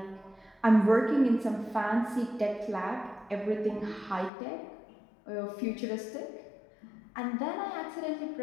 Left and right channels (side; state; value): right; drops out; at 4.3 s